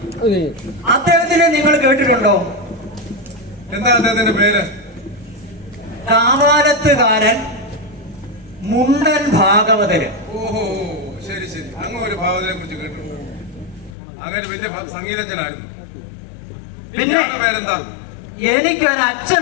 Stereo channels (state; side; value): drops out; right; at 14.0 s